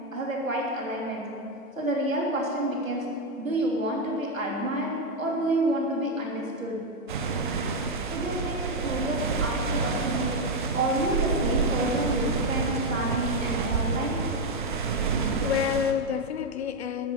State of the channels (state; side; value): normal; both; correlation 0.04